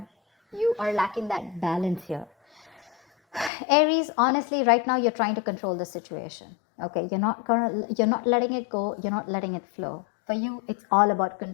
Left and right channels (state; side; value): drops out; right; at 3.5 s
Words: You are lacking that balance here. Aries, honestly, right now you're trying to control the situation. Okay, you're not letting it go, you're not letting it flow. For you, it's all about